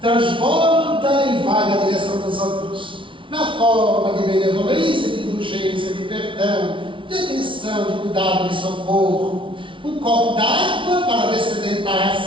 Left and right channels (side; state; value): left; late; 0.25 ms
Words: Transborda e vai na direção dos outros. Na forma de benevolência, de indulgência, de perdão, de atenção, de cuidado, de socorro. Um copo d'água para descedentar a